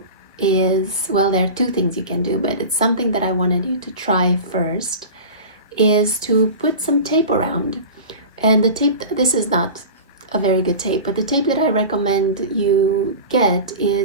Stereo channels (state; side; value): inverted; both; correlation -0.32